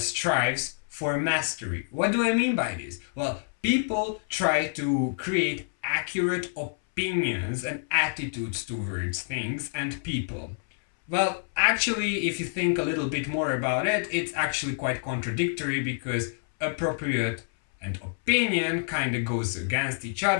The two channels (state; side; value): silent; right; 60 dB below the other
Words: for mastery. What do I mean by this? Well, people try to create accurate opinions and attitudes towards things and people. Well, actually, if you think a little bit more about it, it's actually quite contradictory because appropriate and opinion kind of goes against each